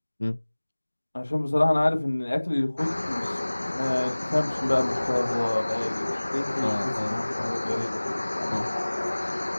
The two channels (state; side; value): inverted; both; correlation -1.00